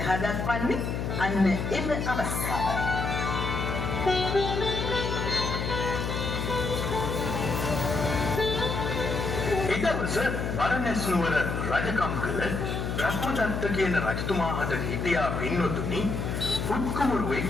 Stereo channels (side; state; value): left; noise; hum, 2 dB below the sound